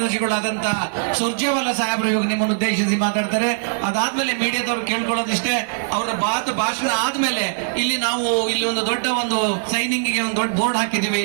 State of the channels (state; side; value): silent; left; 65 dB below the other